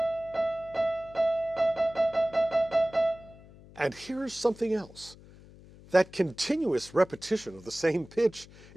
And here's something else. That continuous repetition of the same pitch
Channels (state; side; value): noise; left; hum, 21 dB below the sound